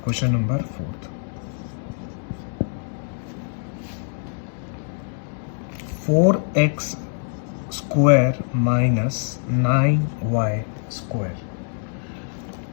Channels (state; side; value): silent; right; 63 dB below the other